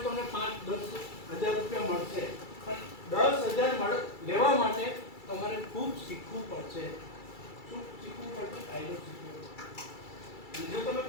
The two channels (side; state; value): right; late; 2.3 ms